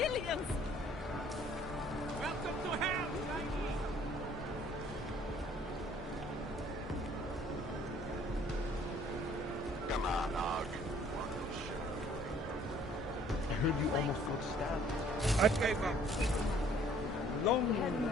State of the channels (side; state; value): both; normal; correlation 0.58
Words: Welcome to hell, Chinese. Come on, Og. I heard you almost got stabbed. I gave up. Long war.